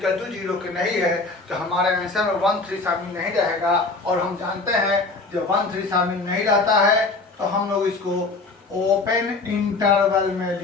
टू 0 के नहीं है तो हमारे आंसर में 1 3 शामिल नहीं रहेगा। और हम जानते हैं जब 1 3 शामिल नहीं रहता है तो हम लोग इसको ओपन इंटरवल में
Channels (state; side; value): quieter; right; 3.6 dB